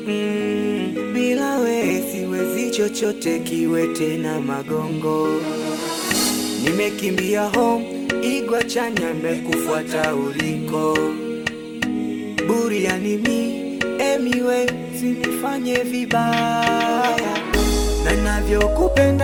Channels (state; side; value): identical; both; correlation 1.00